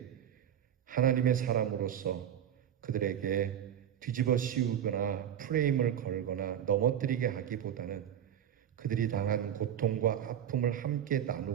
하나님의 사람으로서 그들에게 뒤집어 씌우거나 프레임을 걸거나 넘어뜨리게 하기보다는 그들이 당한 고통과 아픔을 함께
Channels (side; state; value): left; quieter; 9.8 dB